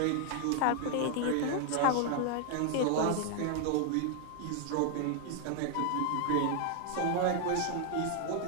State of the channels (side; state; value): both; different; correlation 0.00